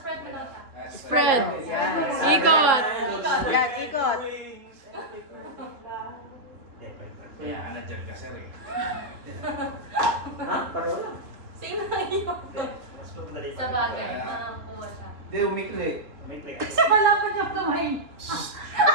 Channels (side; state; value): left; late; 2.9 ms